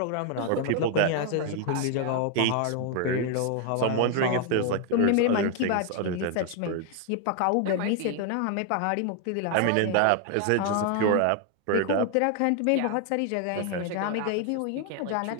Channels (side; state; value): both; different; correlation 0.00